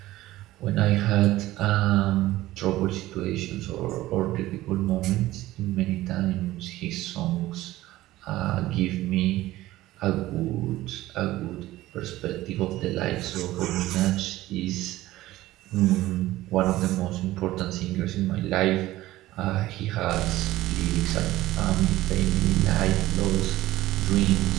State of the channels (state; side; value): quieter; left; 16.4 dB